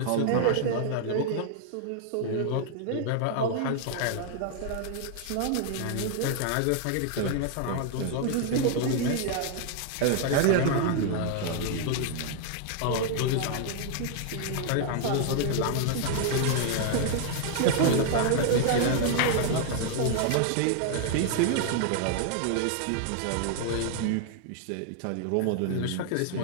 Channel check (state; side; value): different; both; correlation 0.00